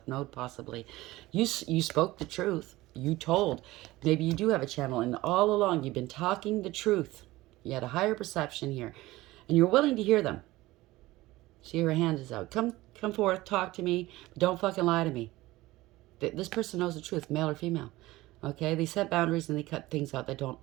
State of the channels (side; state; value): left; quieter; 18.5 dB